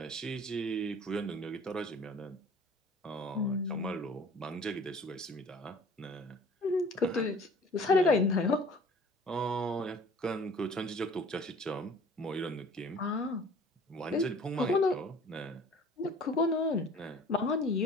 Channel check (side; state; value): both; normal; correlation 0.49